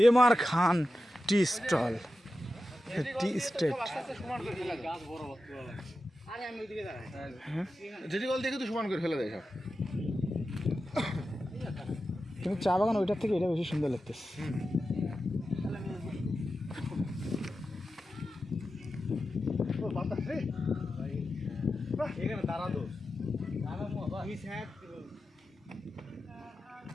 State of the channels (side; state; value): both; normal; correlation 0.92